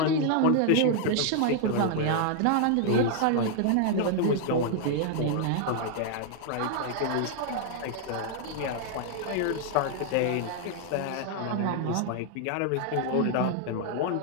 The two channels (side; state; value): both; different; correlation 0.00